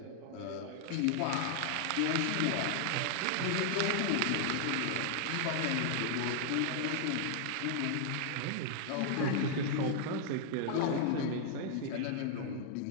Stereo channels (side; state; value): both; different; correlation 0.00